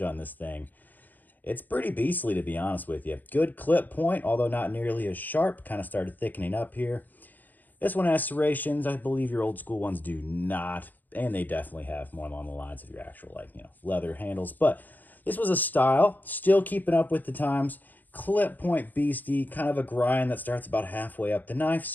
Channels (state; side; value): late; right; 0.085 ms